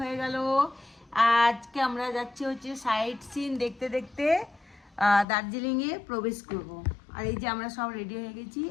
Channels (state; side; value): drops out; right; at 5.2 s